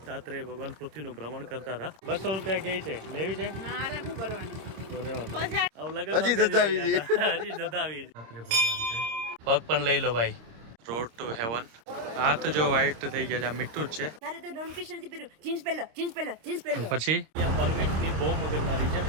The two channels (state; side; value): late; left; 26 ms